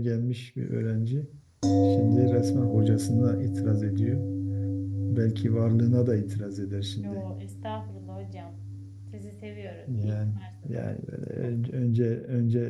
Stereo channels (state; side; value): identical; both; correlation 1.00